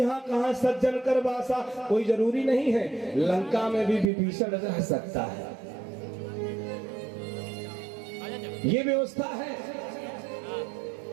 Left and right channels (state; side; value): drops out; left; at 4.1 s